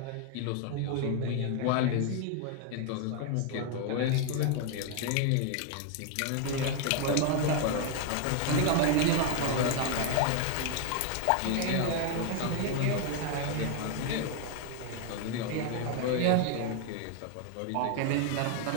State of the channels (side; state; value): both; different; correlation 0.01